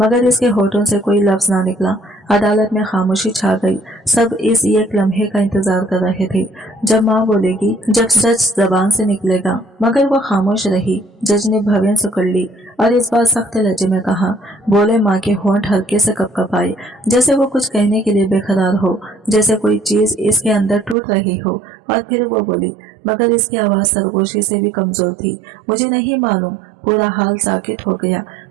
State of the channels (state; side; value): drops out; left; at 21.0 s